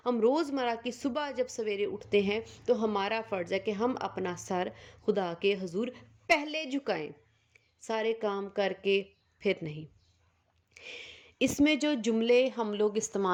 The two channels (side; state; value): both; identical; correlation 1.00